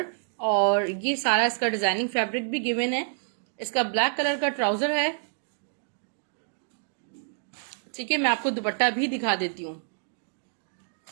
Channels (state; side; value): silent; left; digital silence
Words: और ये सारा इसका डिजाइनिंग फैब्रिक भी गिवन है। इसका ब्लैक कलर का ट्राउजर है। ठीक है, मैं आपको दुपट्टा भी दिखा देती हूँ।